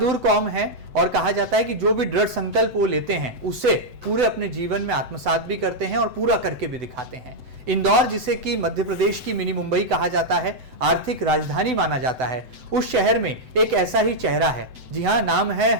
कौम है और कहा जाता है कि जो भी दृढ़ संकल्प वो लेते हैं उसे पूरे अपने जीवन में आत्मसात भी करते हैं और पूरा करके भी दिखाते हैं। इंदौर, जिसे कि मध्य प्रदेश की मिनी मुंबई कहा जाता है, आर्थिक राजधानी माना जाता है, उस शहर में एक ऐसा ही चेहरा है। जी हाँ, नाम है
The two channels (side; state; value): left; late; 7.9 ms